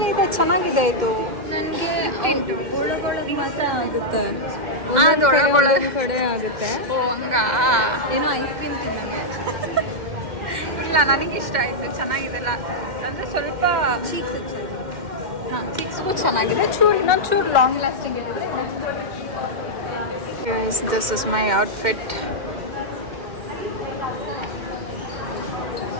ಇದೆ, ಚೆನ್ನಾಗಿದೆ ಇದು. ಆಗುತ್ತೆ ಒಂದೊಂದ್ ಕಡೆ ಆಗುತ್ತೆ. ಓ ಹಂಗ. ಏನೋ ಐಸ್ ಕ್ರೀಮ್ ಇಲ್ಲ, ನನಗೆ ಇಷ್ಟ ಆಯಿತು, ಚೆನ್ನಾಗಿದೆಲ್ಲ. ಅಂದರೆ ಸ್ವಲ್ಪ ಚಿಕ್ಸ್ಗೂ ಚೆನ್ನಾಗಿದೆ, ಇನ್ನೊಂದು ಚೂರು ಲಾಂಗ್ ಲಾಸ್ಟಿಂಗ್ ಇರುತ್ತೆ. This is my outfit.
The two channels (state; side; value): late; left; 2.1 ms